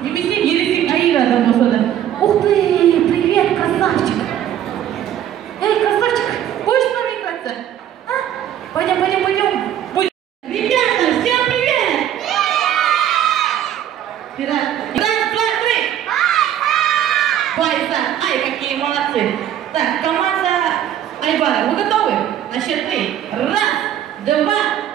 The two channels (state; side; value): quieter; left; 10.8 dB